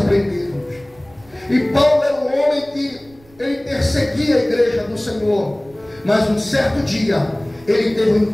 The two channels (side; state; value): right; noise; rumble, 27 dB below the sound